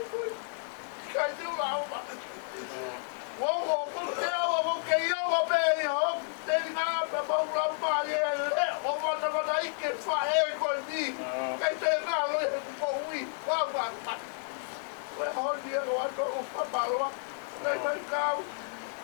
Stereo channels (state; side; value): silent; right; digital silence